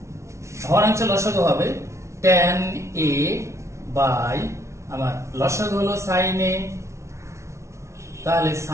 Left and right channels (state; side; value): late; left; 0.13 ms